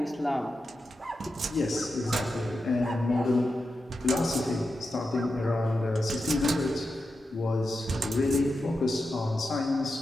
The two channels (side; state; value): both; normal; correlation 0.89